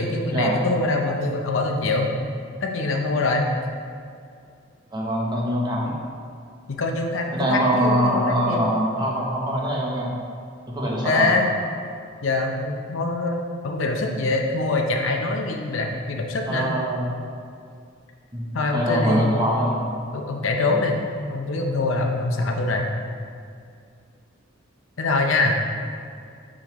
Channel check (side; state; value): both; normal; correlation 0.28